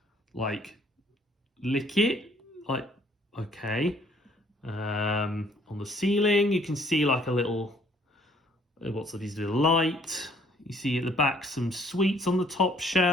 like lick it, like, okay. On the ceiling, you can see like a little, what's these little light. You see at the back some sweets on the top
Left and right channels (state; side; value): normal; both; correlation 0.61